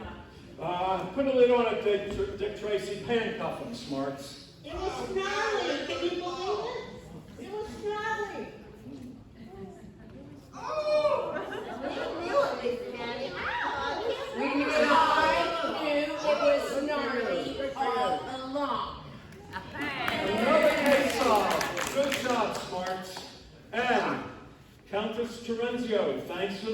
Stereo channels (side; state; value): both; identical; correlation 1.00